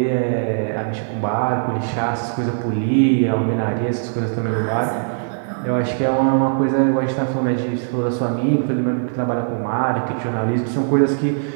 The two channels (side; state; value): left; silent; digital silence